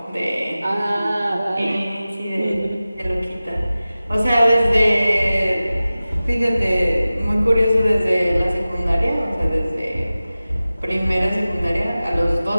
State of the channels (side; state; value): both; inverted; correlation -0.96